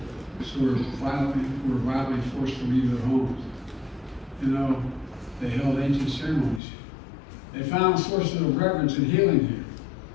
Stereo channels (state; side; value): drops out; right; at 6.6 s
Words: who were violently forced to leave their homes. You know, they held ancient ceremonies. They found sources of reverence and healing here.